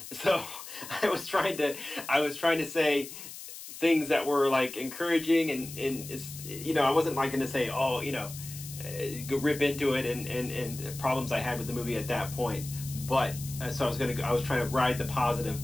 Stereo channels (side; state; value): left; noise; hiss, 12 dB below the sound